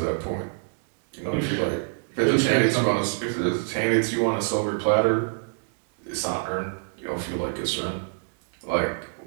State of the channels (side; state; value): left; silent; 58 dB below the other